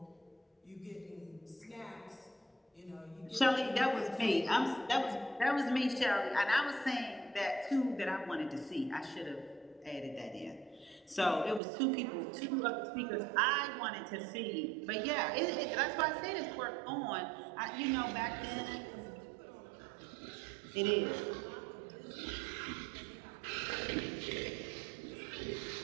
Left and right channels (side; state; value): left; drops out; at 11.6 s